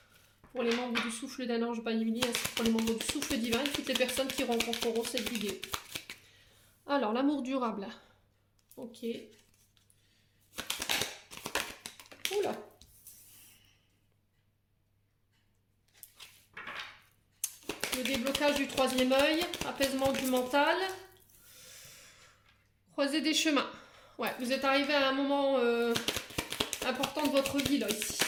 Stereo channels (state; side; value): identical; both; correlation 1.00